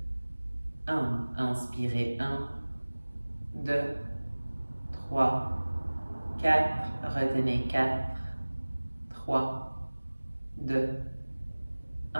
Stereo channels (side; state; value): both; inverted; correlation -1.00